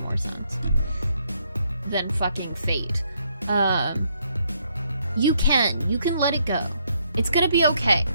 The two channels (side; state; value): both; inverted; correlation -0.73